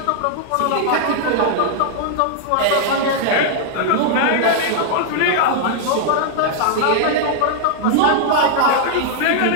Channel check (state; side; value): different; both; correlation -0.01